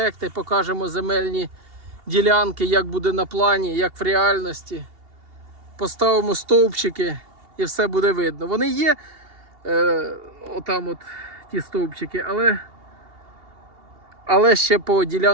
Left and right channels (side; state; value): left; late; 2.8 ms